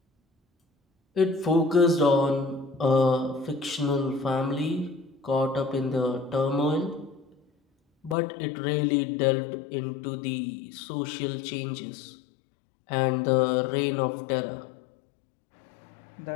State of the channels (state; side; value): drops out; right; at 8.2 s